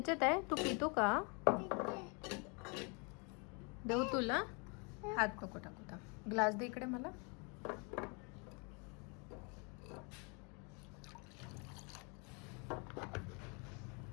आहे. तू पितो का? देऊ तुला. हात नको टाकू. ग्लास दे इकडे मला.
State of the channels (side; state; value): right; quieter; 33.4 dB